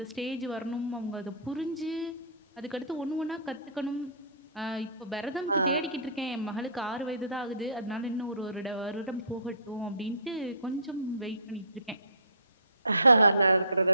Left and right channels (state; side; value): inverted; both; correlation -0.42